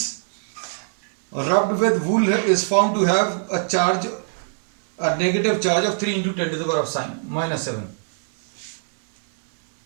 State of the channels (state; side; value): silent; left; digital silence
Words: rubbed with wool is found to have a negative charge of 3 into 10⁻⁻7।